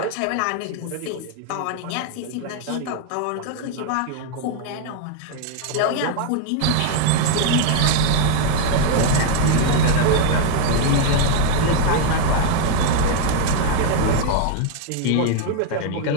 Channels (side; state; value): both; different; correlation 0.00